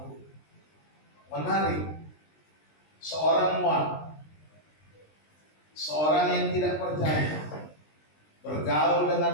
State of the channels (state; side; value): late; right; 20 ms